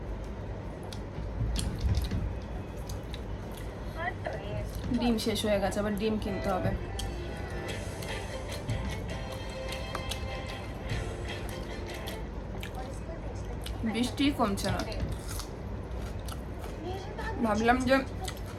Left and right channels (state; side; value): identical; both; correlation 1.00